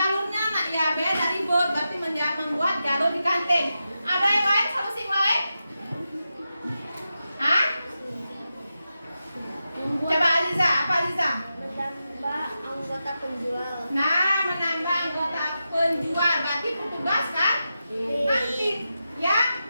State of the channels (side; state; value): both; inverted; correlation -0.90